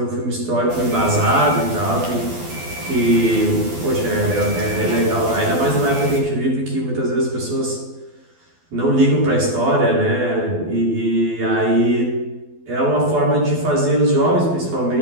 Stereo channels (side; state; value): left; late; 12 ms